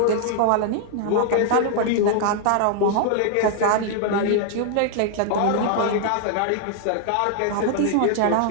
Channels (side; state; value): both; different; correlation 0.00